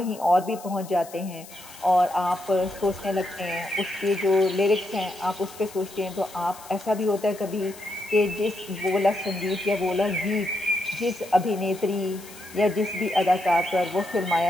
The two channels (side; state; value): left; noise; hiss, 18 dB below the sound